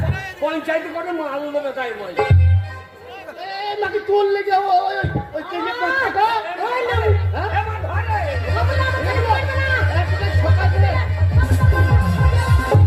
পঞ্চায়েতে করে মাল দেবে, তাই বল। নাকি তোর লেগে ওই কেজি টাকা, ওই না, হ্যাঁ এবার ধরে। বাবা না, আমাকে বলবে না। সকাল দিলে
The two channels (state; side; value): identical; both; correlation 1.00